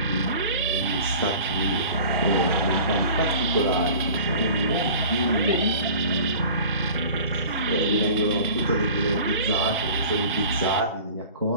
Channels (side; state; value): both; inverted; correlation -0.42